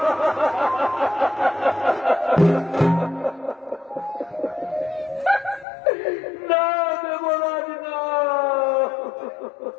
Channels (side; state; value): right; drops out; at 5.7 s